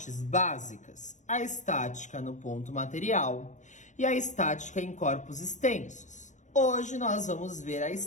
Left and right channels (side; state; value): right; late; 0.35 ms